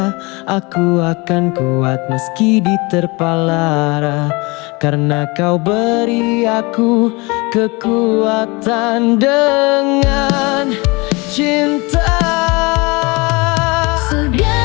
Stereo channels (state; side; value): quieter; right; 26.2 dB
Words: aku akan kuat meski diterpa lara, karena kau beri aku kekuatan dengan cinta.